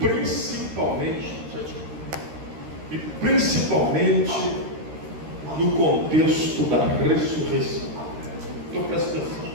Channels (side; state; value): left; late; 13 ms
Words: no contexto da ressurreição. Então presta atenção.